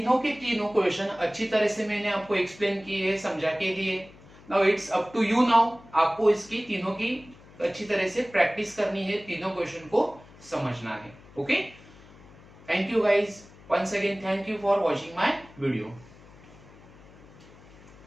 के तीनों question अच्छी तरह से मैंने आपको explain किए, समझा के दिए. Now it's up to you. Now आपको इसकी तीनों की अच्छी तरह से प्रैक्टिस करनी है, तीनों क्वेश्चन को समझना है. Okay. Thank you guys. Once again thank you for watching my video.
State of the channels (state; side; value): noise; left; hum, 22 dB below the sound